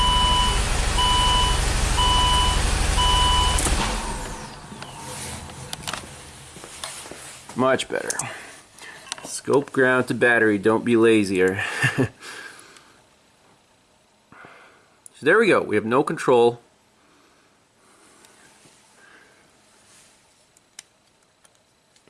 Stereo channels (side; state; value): both; identical; correlation 1.00